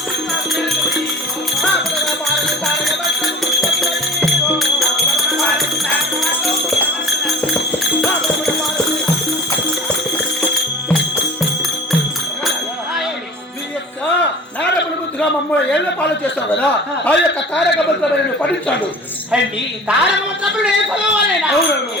మమ్మల్ని ఏళ్ళ పాలు చేస్తావు కదా, ఆ యొక్క తారక మంత్రాలను పఠించాడు. అండి తారక మంత్రములు ఏం చదవాలేనా? అవునవును.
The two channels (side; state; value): both; normal; correlation 0.39